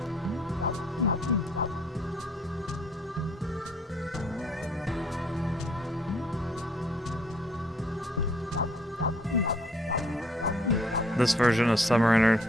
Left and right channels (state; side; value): normal; both; correlation 0.62